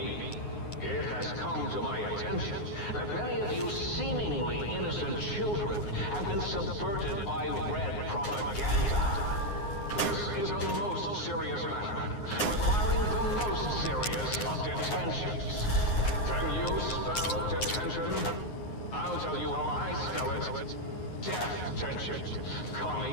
It has come to my attention that many of you seemingly innocent children have been subverted by red propaganda. This is a most serious matter, requiring the most serious of detentions. Can you spell detention? I'll tell you how I spell it. Death tension.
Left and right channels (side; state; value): right; late; 9.6 ms